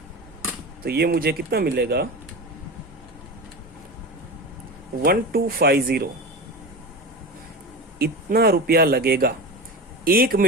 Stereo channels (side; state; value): both; normal; correlation 0.27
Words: तो ये मुझे कितना मिलेगा? 1250। इतना रुपया लगेगा 1